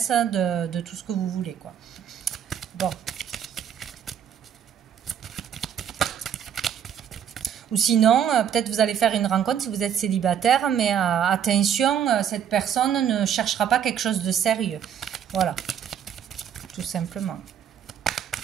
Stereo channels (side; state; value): left; quieter; 8.8 dB